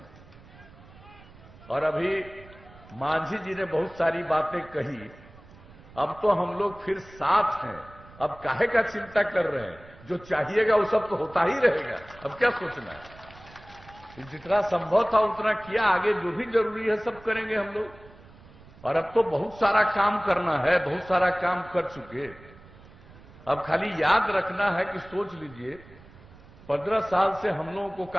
और अभी मांझी जी ने बहुत सारी बातें कही, अब तो हम लोग फिर साथ हैं, अब काहे का चिंता कर रहे हैं, जो चाहिएगा वो सब तो होता ही रहेगा, अब क्या सोचना है। जितना संभव था उतना किया, आगे जो भी जरूरी है सब करेंगे हम लोग। और अब तो बहुत सारा काम करना है, बहुत सारा काम कर चुके, अब खाली याद रखना है कि सोच लीजिए 15 साल से हम लोगों को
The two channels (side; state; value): right; noise; rumble, 22 dB below the sound